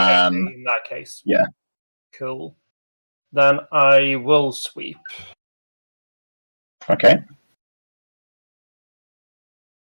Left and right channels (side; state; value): both; inverted; correlation -1.00